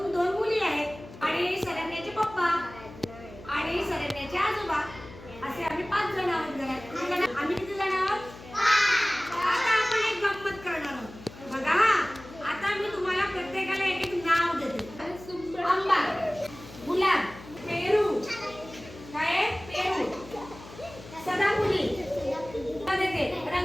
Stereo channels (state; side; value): noise; left; hum, 17 dB below the sound